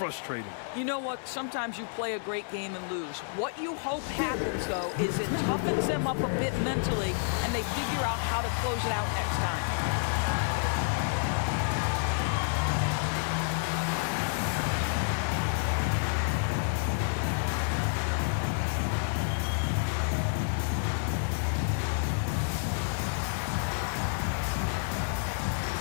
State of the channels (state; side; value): silent; right; 58 dB below the other